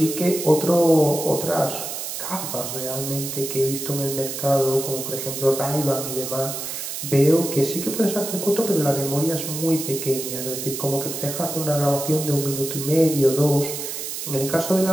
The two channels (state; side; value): noise; right; hiss, 6 dB below the sound